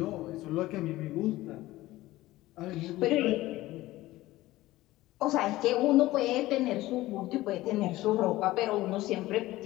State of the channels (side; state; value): right; quieter; 17.3 dB